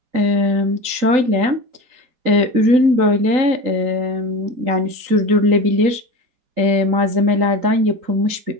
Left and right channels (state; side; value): late; left; 3.9 ms